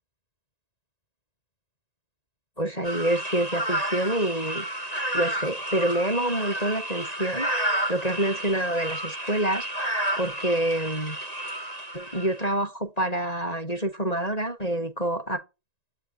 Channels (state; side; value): late; right; 1.9 ms